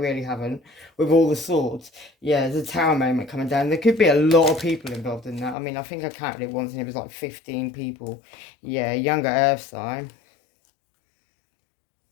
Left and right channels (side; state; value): right; drops out; at 5.6 s